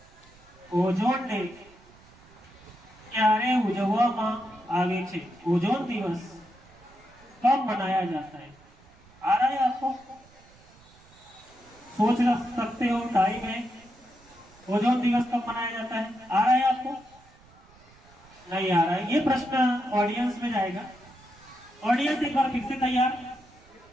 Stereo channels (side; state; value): right; noise; rumble, 27 dB below the sound